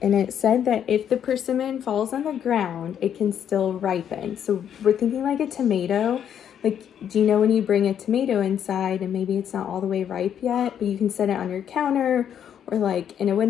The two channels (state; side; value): quieter; right; 9.1 dB